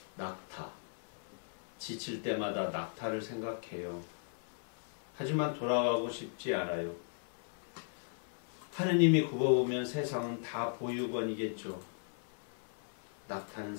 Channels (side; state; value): right; silent; 53 dB below the other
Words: 낙타. 지칠 때마다 낙타를 생각해요. 하지만 돌아가고 싶지 않아요. 하느님이 굽어보면 세상은 다 보육원이겠죠. 낙타는